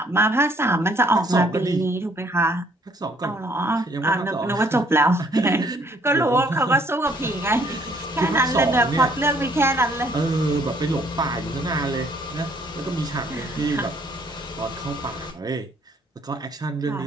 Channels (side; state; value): both; normal; correlation 0.63